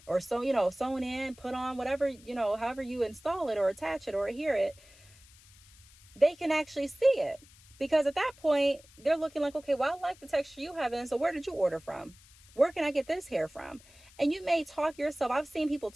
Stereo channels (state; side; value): noise; left; hiss, 25 dB below the sound